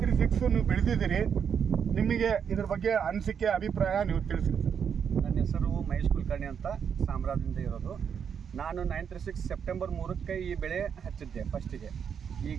ನೀವು ಬೆಳೆದಿದ್ದೀರಿ, ನಿಮಗೆ ಇದ್ರ ಬಗ್ಗೆ ಅನಿಸಿಕೆ ಅಭಿಪ್ರಾಯ ನೀವು ತಿಳಿಸಿ ಸರ್. ನನ್ನ ಹೆಸರು ಮಹೇಶ್ ಕುಲಕರ್ಣಿ ಅಂತ, ಸಾಮ್ರಾದಿಂದ ಇರೋದು. ನಾನು 936 ಸೆಪ್ಟೆಂಬರ್ 3ಕ್ಕೆ ಈ ಬೆಳೆ ಹಚ್ಚಿದ್ದೆ ಫಸ್ಟಿಗೆ.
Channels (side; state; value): left; quieter; 7.4 dB